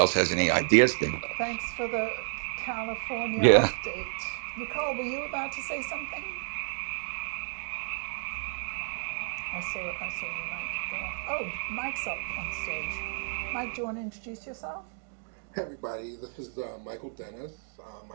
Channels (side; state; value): left; silent; 57 dB below the other